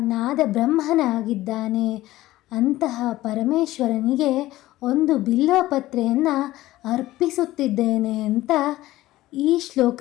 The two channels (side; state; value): right; quieter; 16.5 dB